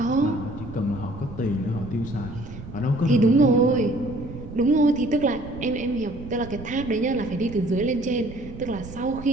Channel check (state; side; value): noise; right; rumble, 13 dB below the sound